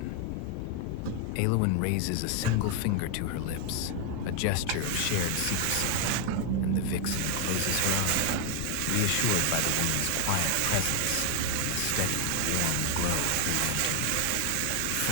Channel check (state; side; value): different; both; correlation 0.01